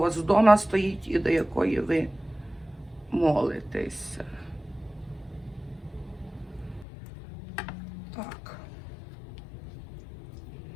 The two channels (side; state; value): right; drops out; at 6.9 s